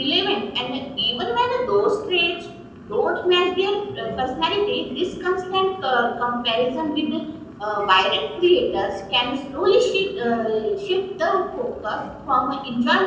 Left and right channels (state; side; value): identical; both; correlation 1.00